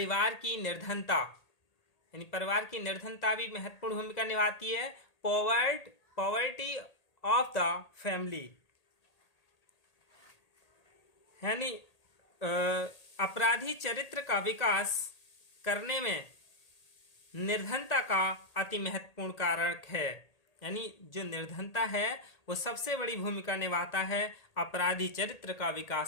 की निर्धनता यानी परिवार की निर्धनता भी महत्वपूर्ण भूमिका निभाती है। पॉवर्टी ऑफ द फैमिली यानी अपराधी चरित्र का विकास करने में निर्धनता का अति महत्वपूर्ण कारक है। यानी जो निर्धनता है वो सबसे बड़ी भूमिका निभाता है अपराधी चरित्र का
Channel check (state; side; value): late; right; 1.8 ms